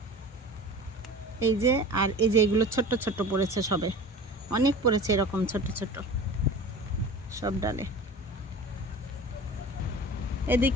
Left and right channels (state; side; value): normal; both; correlation 0.37